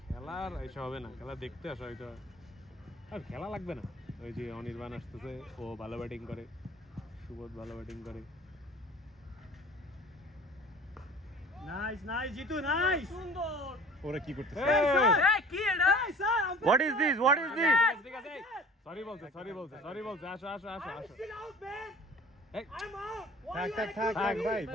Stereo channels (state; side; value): normal; both; correlation 0.45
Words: খেলার এসব হবে না খেলা দেখতে আসা হয়তো আর খেলা লাগবে না ওই যে অনির্বাণ আসতেছে ও ভালো ব্যাটিং করে সুবোধ ভালো ব্যাটিং করে নাইস জিতু নাইস সুন্দর ওরা কি করতেছে এই কি এটা স্যার What is this ঠিক আছে সরি বলছে আসো still out man এই I'm out থাক